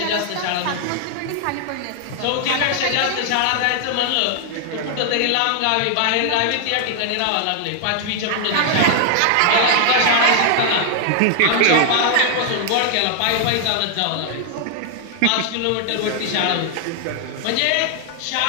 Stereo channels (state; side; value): different; both; correlation 0.00